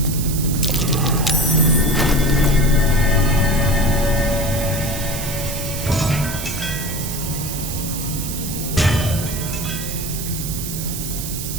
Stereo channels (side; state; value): right; noise; hiss, 7 dB below the sound